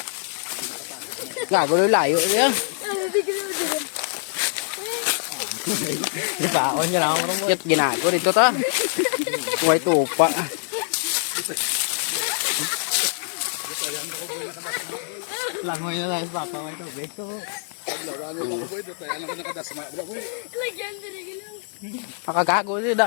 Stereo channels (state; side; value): silent; right; digital silence